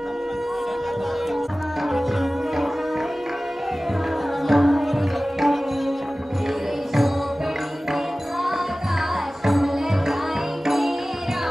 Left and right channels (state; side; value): normal; both; correlation 0.97